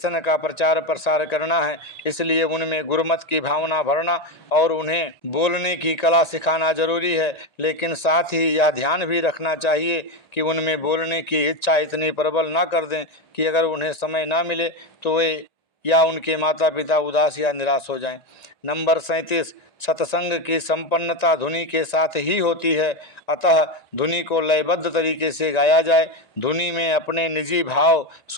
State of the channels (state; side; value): late; right; 1.9 ms